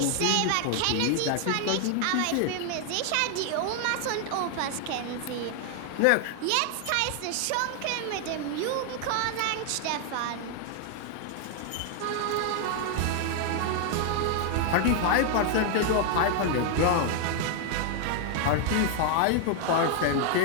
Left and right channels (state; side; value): different; both; correlation 0.00